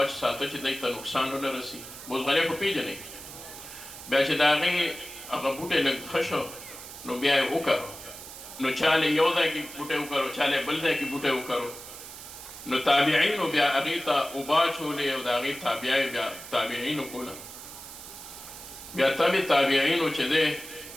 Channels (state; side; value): noise; right; hiss, 13 dB below the sound